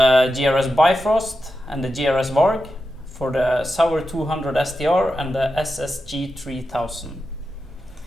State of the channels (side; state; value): both; normal; correlation 0.90